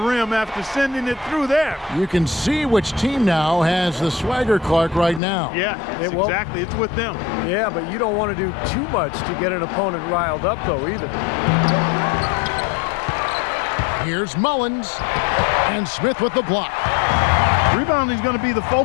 rim after sending it through there. You can see which team now has the swagger, Clark, right now. Yeah, exactly. It's with them. Yeah, but you don't want to do too much to get an opponent riled up, though, either. Here's Mullins, and Smith with the block. Rebounding is going to be the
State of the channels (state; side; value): drops out; right; at 5.2 s